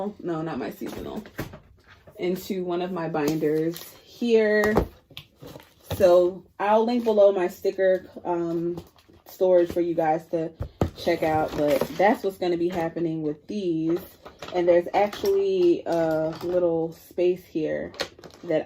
no, not my seasonal, into one of my binders here. So I'll link below my sticker storage for you guys to check out, but that's what's going to be happening with these. And there's actually a little space here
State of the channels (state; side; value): identical; both; correlation 1.00